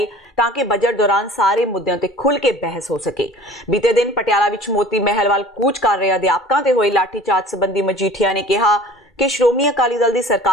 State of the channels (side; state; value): both; normal; correlation 0.45